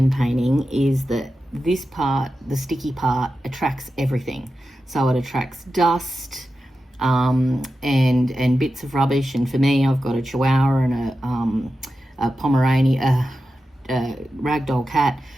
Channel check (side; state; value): both; normal; correlation 0.91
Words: painting is that this part, the sticky part, attracts everything. So it attracts dust and bits of rubbish. And for me, I've got a Chihuahua and a Pomeranian, a ragdoll cat.